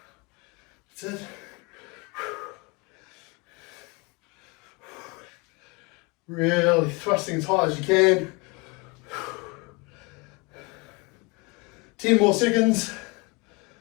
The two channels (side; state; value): right; quieter; 27.5 dB